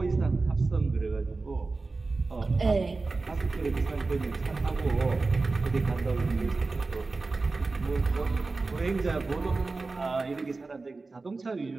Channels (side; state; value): left; quieter; 3.7 dB